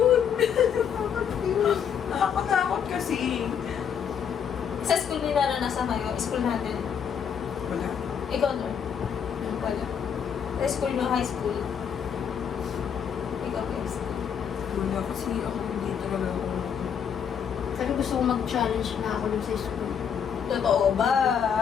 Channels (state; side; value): quieter; right; 7.8 dB